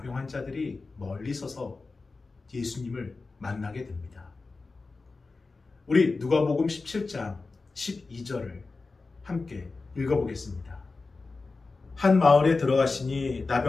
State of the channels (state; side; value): quieter; right; 3.9 dB